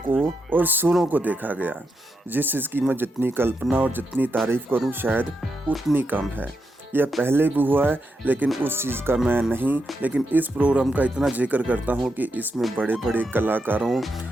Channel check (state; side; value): normal; both; correlation 0.84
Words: को और सुरों को देखा गया। जिस चीज़ की मैं जितनी कल्पना और जितनी तारीफ़ करूं शायद उतनी कम है। यह पहले भी हुआ है लेकिन उस चीज़ का मैं नहीं, लेकिन इस प्रोग्राम का इतना जिक्र करता हूँ कि इसमें बड़े बड़े कलाकारों